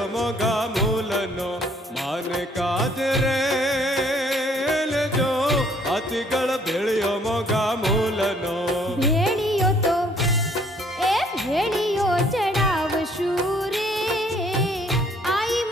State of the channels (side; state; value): both; normal; correlation 0.62